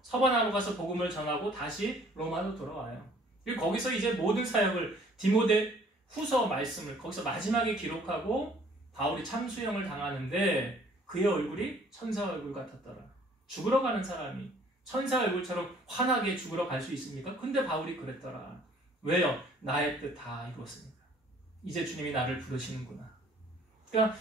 서바나로 가서 복음을 전하고 다시 로마로 돌아와요. 그리고 거기서 이제 모든 사역을 디모데 후서 말씀을 거기서 마지막에 기록하고 바울이 참수형을 당하는데 그의 얼굴이 천사 얼굴 같았더라. 죽으러 가는 사람이 천사 얼굴처럼 환하게 죽으러 갈 수 있습니까? 근데 바울이 그랬더라. 왜요? 나의 뜻 다 이루었으니까. 이제 주님이 나를 부르시는구나. 그러니까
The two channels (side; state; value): both; normal; correlation 0.57